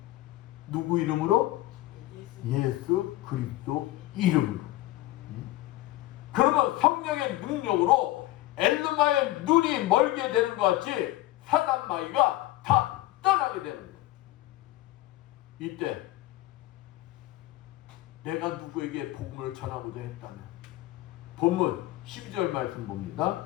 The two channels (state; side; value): quieter; right; 16.9 dB